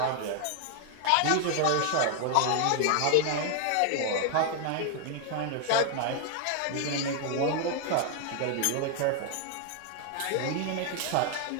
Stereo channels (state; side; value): different; both; correlation 0.00